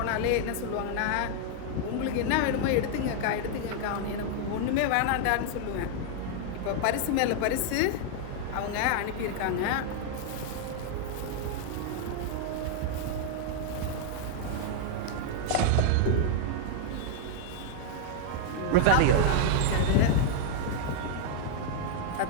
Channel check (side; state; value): both; different; correlation 0.00